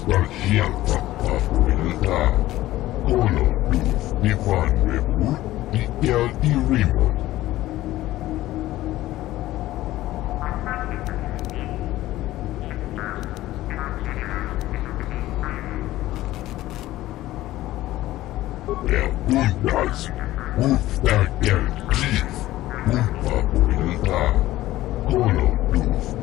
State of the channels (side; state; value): right; quieter; 15.8 dB